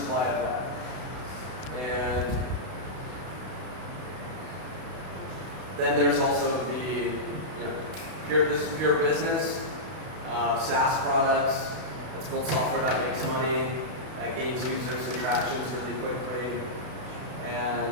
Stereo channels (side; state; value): left; late; 32 ms